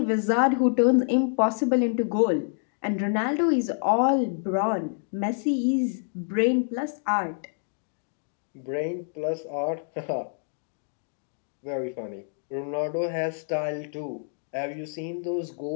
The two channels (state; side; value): silent; right; digital silence